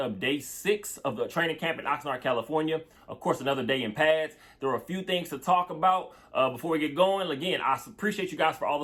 day 6 of the training camp in Oxnard, California. Of course, another day in pads. There are a few things to talk about before we get going. Again, I appreciate you guys for all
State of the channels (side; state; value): both; identical; correlation 1.00